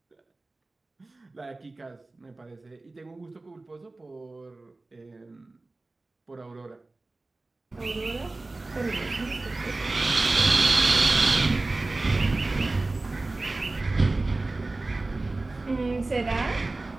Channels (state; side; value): quieter; left; 3.1 dB